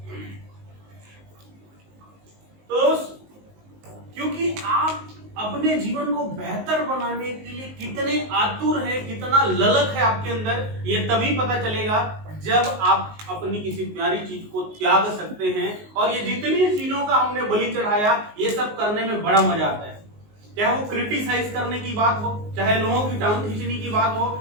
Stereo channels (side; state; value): left; late; 19 ms